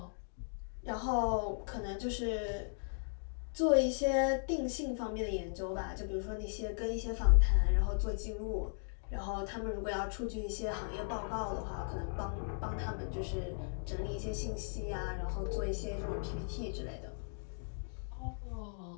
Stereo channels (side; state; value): right; silent; digital silence